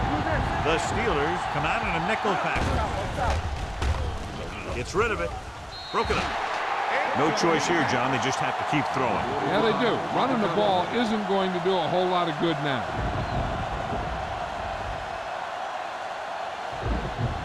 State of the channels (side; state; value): both; identical; correlation 1.00